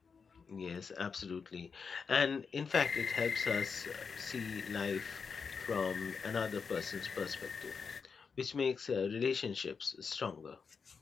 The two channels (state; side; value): quieter; right; 5.6 dB